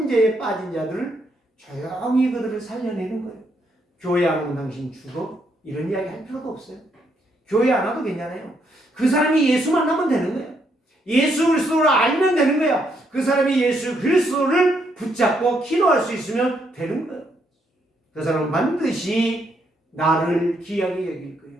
빠진 자들을 조용히 그들을 살려내는 거예요. 교회 안 오면 당신 죽어? 이런 이야기 할 필요도 없어요. 교회 안 와도 괜찮아요. 그 사람이 예수 만나면 되는 거예요. 예수 그리스도를 알면 되는 거예요. 그 사람이 예수 그리스도를 붙잡고 기도할 수 있으면 되는 거예요. 그 사람은 반드시 나를 귀하게 여길 거예요.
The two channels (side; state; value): both; normal; correlation 0.75